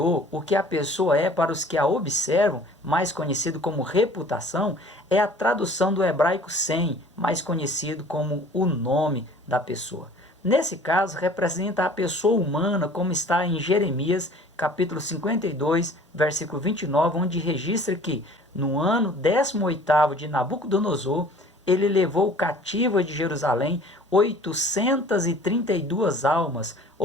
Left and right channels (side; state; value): both; normal; correlation 0.49